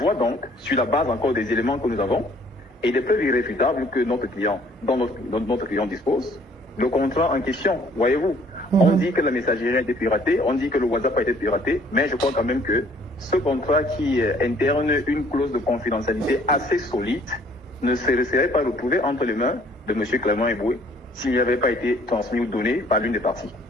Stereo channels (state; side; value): normal; both; correlation 0.59